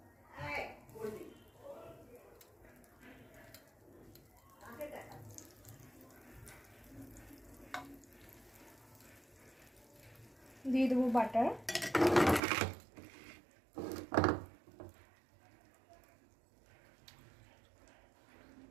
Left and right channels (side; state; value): left; drops out; at 12.4 s